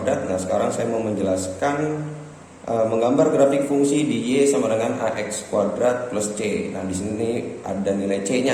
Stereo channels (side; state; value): both; identical; correlation 1.00